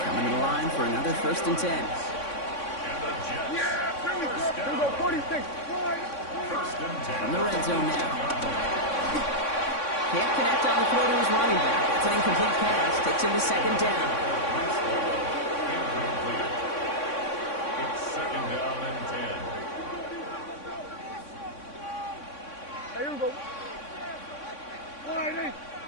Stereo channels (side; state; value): right; late; 3.6 ms